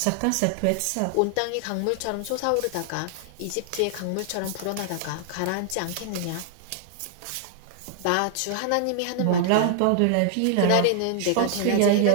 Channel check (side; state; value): both; different; correlation 0.00